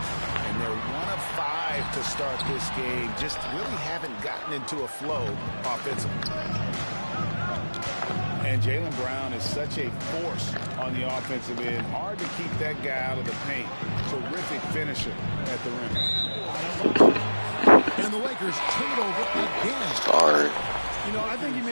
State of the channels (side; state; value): both; inverted; correlation -1.00